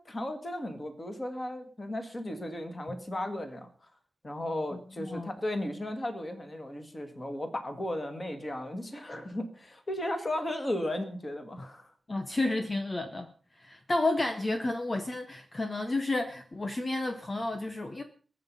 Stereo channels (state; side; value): normal; both; correlation 0.93